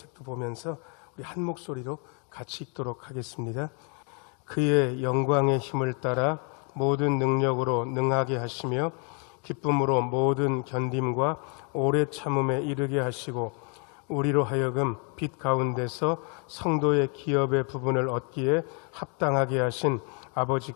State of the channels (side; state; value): right; quieter; 37.2 dB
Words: 보면서 우리 한 목소리로 같이 읽도록 하겠습니다. 그의 영광의 힘을 따라 모든 능력으로 능하게 하시며 기쁨으로 모든 견딤과 오래 참음에 이르게 하시고 우리로 하여금 빛 가운데서 성도의 기업의 부분을 얻기에 합당하게 하신